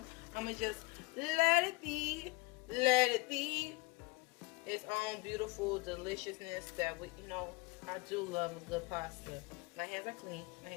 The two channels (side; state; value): right; quieter; 25.0 dB